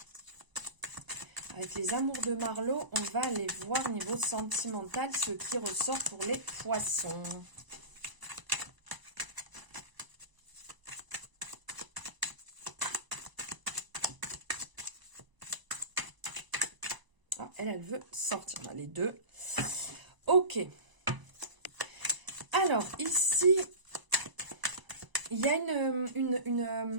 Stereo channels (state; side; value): late; left; 1.0 ms